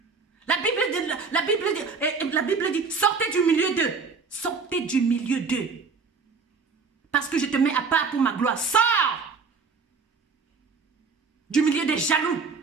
La Bible dit, sortez du milieu d'eux. Sortez du milieu d'eux. Parce que je te mets à part pour ma gloire. Sors du milieu des jaloux.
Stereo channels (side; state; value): left; quieter; 5.0 dB